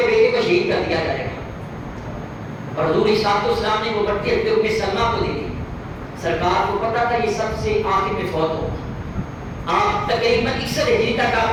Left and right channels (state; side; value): identical; both; correlation 1.00